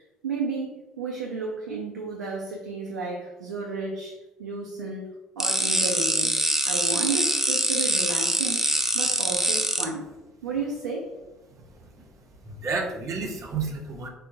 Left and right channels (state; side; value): normal; both; correlation 0.48